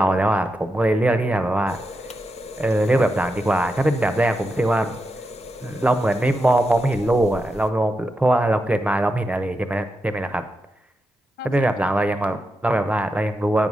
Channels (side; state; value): both; normal; correlation 0.87